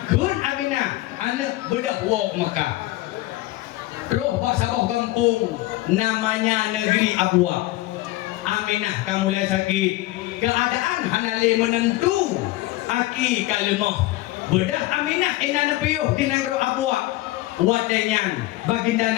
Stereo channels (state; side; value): quieter; right; 17.7 dB